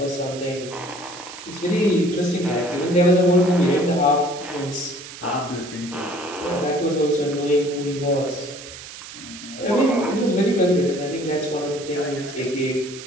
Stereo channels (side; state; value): right; noise; hiss, 14 dB below the sound